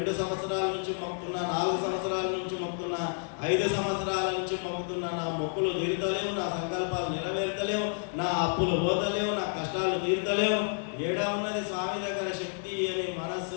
సంవత్సరాల నుంచి మొక్కుతున్నా, 4 సంవత్సరాల నుంచి మొక్కుతున్నా, 5 సంవత్సరాల నుంచి మొక్కుతున్నా. నా మొక్కులు తీరుతలేవు, నా సంకల్పాలు నెరవేరుతలేవు, నా అప్పులు పోతలేవు, నా కష్టాలు తీరుతలేవు. ఏడా ఉన్నది స్వామి దగ్గర శక్తి అని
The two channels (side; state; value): right; silent; 58 dB below the other